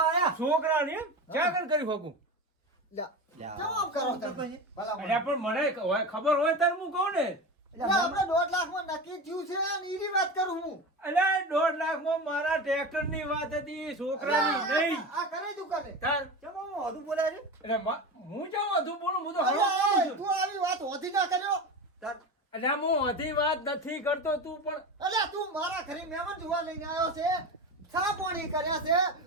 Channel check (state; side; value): normal; both; correlation 0.25